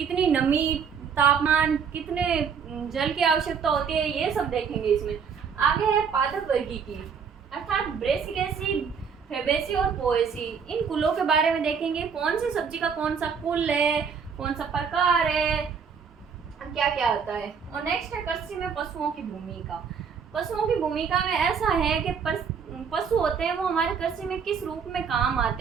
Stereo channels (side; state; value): left; quieter; 6.4 dB